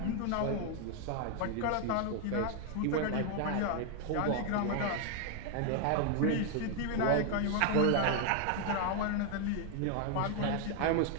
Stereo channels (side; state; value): both; different; correlation 0.00